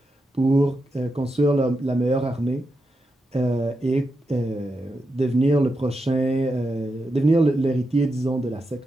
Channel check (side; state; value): both; normal; correlation 0.87